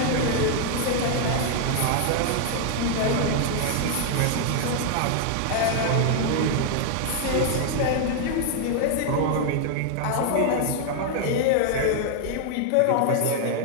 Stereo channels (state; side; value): different; both; correlation 0.00